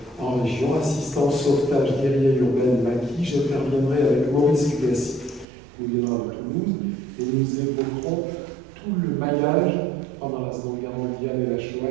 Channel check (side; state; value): left; drops out; at 5.5 s